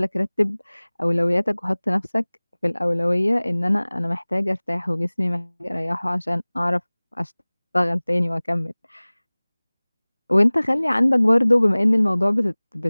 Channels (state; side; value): inverted; both; correlation -1.00